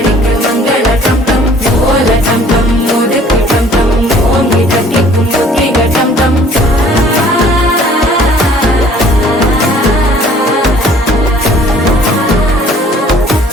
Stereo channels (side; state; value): both; normal; correlation 0.55